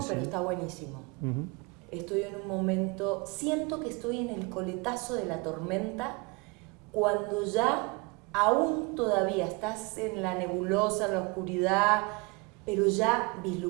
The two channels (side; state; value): left; quieter; 28.2 dB